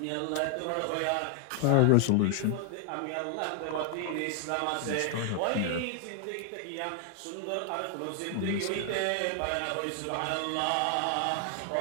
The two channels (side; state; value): both; different; correlation 0.00